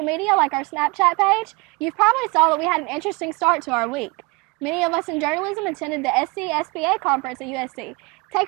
media like our Snapchat page, you've probably saw that we had an interesting start to our week. Many of us in journalism attended the SC-SBA conference at USC. Take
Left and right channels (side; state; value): left; quieter; 27.4 dB